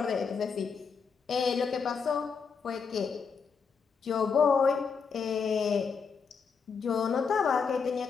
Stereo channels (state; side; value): quieter; right; 5.8 dB